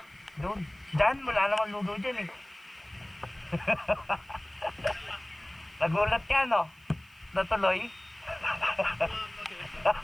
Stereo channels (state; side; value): noise; right; hiss, 30 dB below the sound